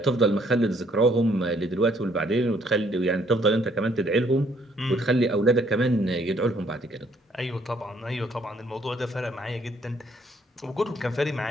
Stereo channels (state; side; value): normal; both; correlation 0.65